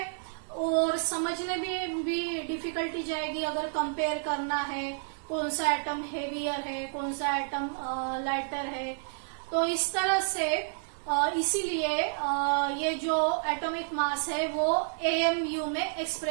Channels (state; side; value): silent; left; 58 dB below the other